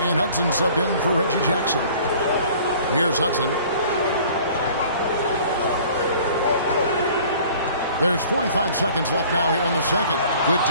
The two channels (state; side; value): inverted; both; correlation -0.50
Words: And Hudson subbed in for Reggie Jackson. Here's Hudson. There's 45 seconds left now here in the second. Good